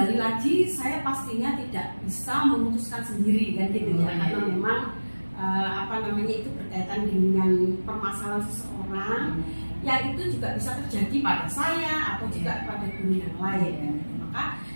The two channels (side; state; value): both; inverted; correlation -1.00